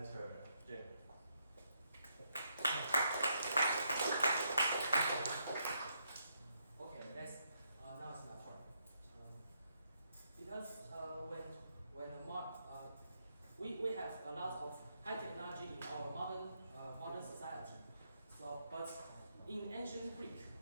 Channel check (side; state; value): both; inverted; correlation -0.78